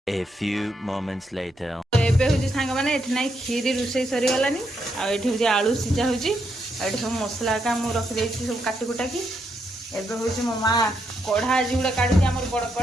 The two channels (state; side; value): normal; both; correlation 0.79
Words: A few moments later. तो एबे हूँ सांग मैंने ना खीरी रोषे सरी गलानी आठ आलू सीझा हो सब मसला का मुझे रखी सब काटी कुटाकी एबे हूँ मो माँ कढ़ा आज गोटे काढ़ी आम बड़